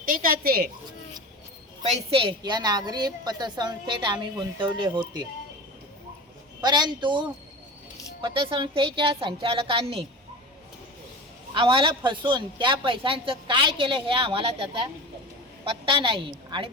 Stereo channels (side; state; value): both; normal; correlation 0.32